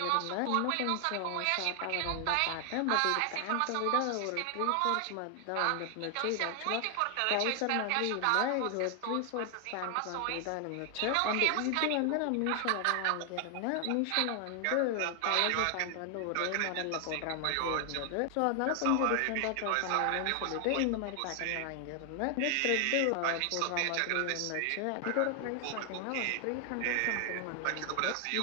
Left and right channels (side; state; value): both; different; correlation 0.00